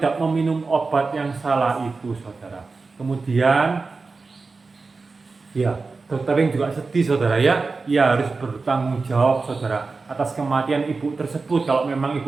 meminum obat yang salah itu, saudara. Kemudian ya, dokter Ling juga sedih, saudara ya. Ia harus bertanggung jawab, saudara, atas kematian ibu tersebut. Kalau memang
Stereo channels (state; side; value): quieter; left; 4.1 dB